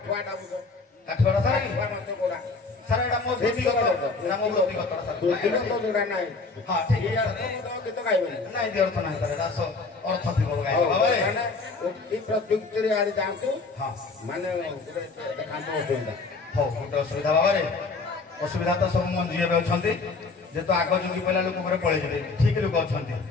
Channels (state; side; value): quieter; right; 4.0 dB